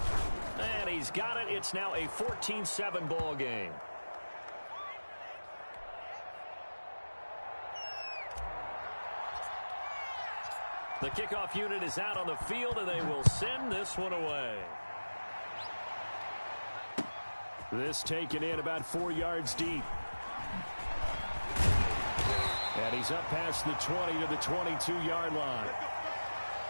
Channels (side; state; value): both; inverted; correlation -1.00